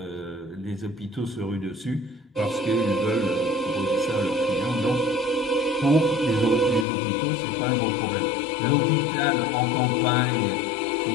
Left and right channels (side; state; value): right; drops out; at 6.9 s